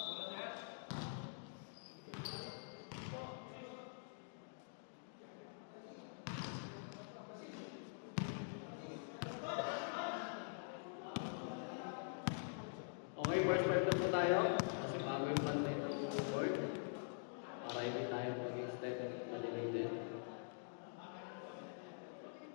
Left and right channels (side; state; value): right; silent; digital silence